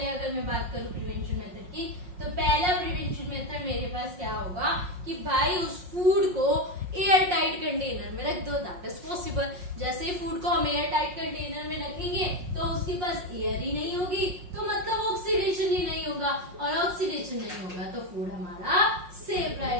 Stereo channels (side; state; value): left; late; 5.5 ms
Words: अगर मैं बात करूं प्रिवेंशन मेथड की, तो पहला प्रिवेंशन मेथड मेरे पास क्या होगा कि भाई उस फूड को एयर टाइट कंटेनर में रख दो, दैट इज पॉसिबल। जैसे ही फूड को हम एयर टाइट कंटेनर में रखेंगे तो उसके पास एयर ही नहीं होगी, तो मतलब ऑक्सीडेशन ही नहीं होगा, और ऑक्सीडेशन नहीं होगा तो फूड हमारा सेफ